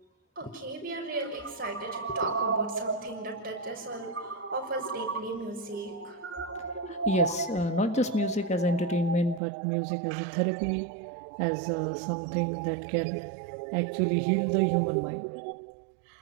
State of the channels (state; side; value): drops out; left; at 9.4 s